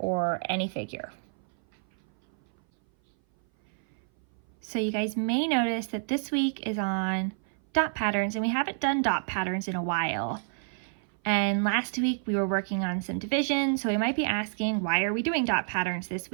any figure. So you guys may notice that this week is on dot patterns, and we haven't done dot patterns in a while. And last week we were working on some division, so we might be asking, why are we doing dot patterns this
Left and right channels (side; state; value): left; silent; 57 dB below the other